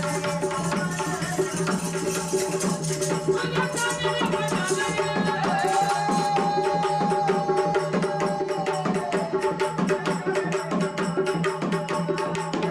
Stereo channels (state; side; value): identical; both; correlation 1.00